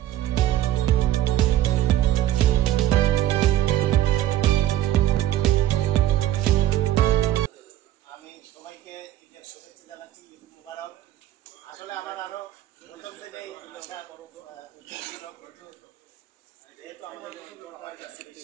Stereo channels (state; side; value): quieter; left; 13.3 dB